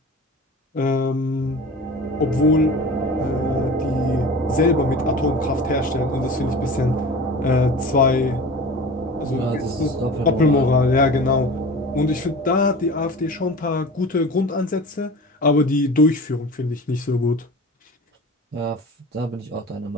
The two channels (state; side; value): normal; both; correlation 0.37